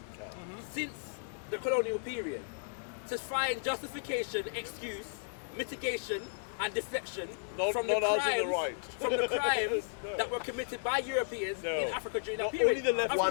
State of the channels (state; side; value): silent; right; digital silence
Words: since the colonial period to find justification, excuse, mitigation, and deflection from the crimes that were committed by Europeans in Africa during that period. Only the left,